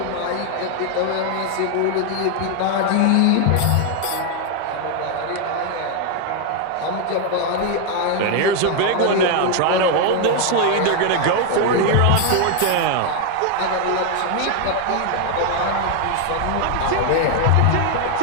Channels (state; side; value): different; both; correlation 0.01